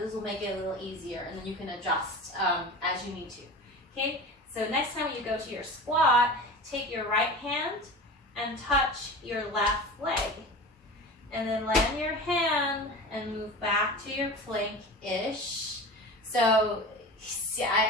This will make it a little easier, and then you can adjust as you need to. Okay, so next time you go to your squat, take your right hand and touch your left leg. And then land your hand and move back to your plank-ish. So see,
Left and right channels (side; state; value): both; normal; correlation 0.33